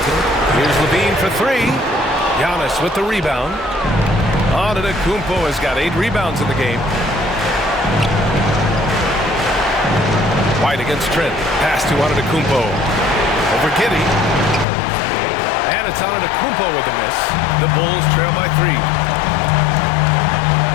Here's Levine for 3. Giannis with the rebound. Antetokounmpo has got 8 rebounds in the game. White against Trent. Pass to Antetokounmpo. Over Giddey. And it's Antetokounmpo with the miss. The Bulls trail by 3.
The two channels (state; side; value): drops out; right; at 14.7 s